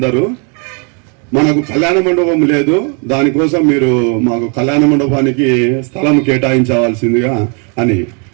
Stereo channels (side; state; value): left; quieter; 37.0 dB